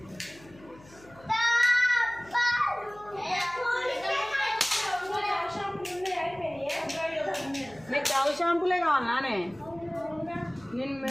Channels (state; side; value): noise; left; hum, 24 dB below the sound